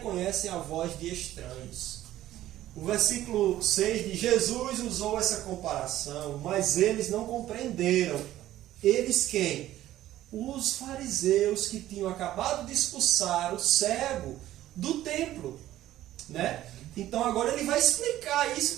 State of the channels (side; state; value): left; quieter; 13.9 dB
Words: a voz de estranhos. O versículo 6 de Jesus usou essa comparação, mas eles não compreenderam. Eles quem? Os fariseus que tinham acabado de expulsar o cego do templo. Né? Então agora ele vai explicar isso